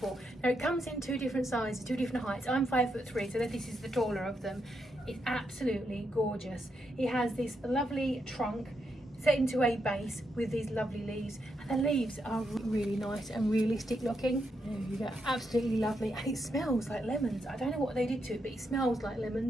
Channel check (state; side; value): normal; both; correlation 0.81